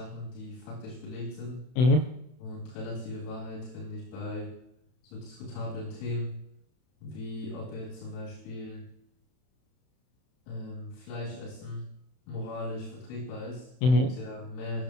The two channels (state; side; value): late; right; 31 ms